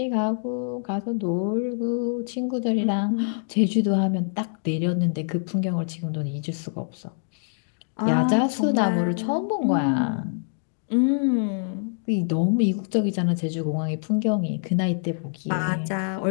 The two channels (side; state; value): right; silent; digital silence